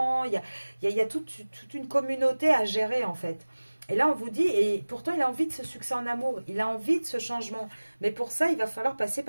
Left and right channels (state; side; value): inverted; both; correlation -1.00